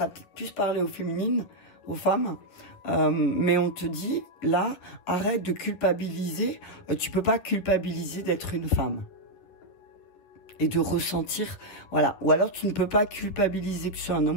peut plus parler aux féminines, aux femmes, mais on te dit, là, arrête de culpabiliser. Tu peux pas culpabiliser d'être une femme. Et de ressentir, voilà. Ou alors, tu ne peux pas culpabiliser que tu sois un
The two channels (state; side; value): late; right; 11 ms